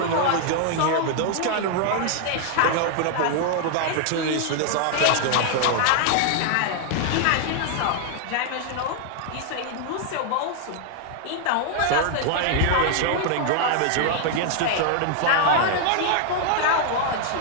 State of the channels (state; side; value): different; both; correlation 0.00